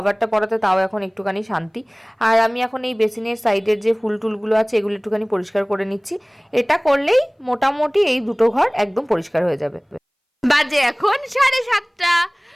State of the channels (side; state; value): both; identical; correlation 1.00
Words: পরাতে তাও এখন একটুখানি শান্তি। আর আমি এখন এই বেসিনের সাইডের যে ফুল টুলগুলো আছে এগুলো একটুখানি পরিষ্কার করে নিচ্ছি। এটা করলেই মোটামুটি এই দুটো ঘর একদম পরিষ্কার হয়ে যাবে। বাজে এখন 7:30।